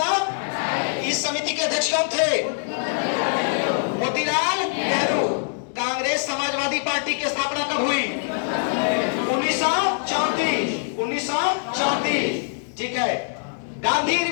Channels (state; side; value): silent; right; digital silence